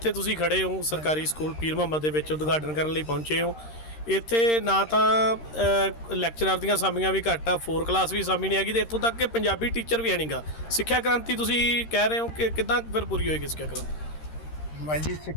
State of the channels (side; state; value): right; late; 13 ms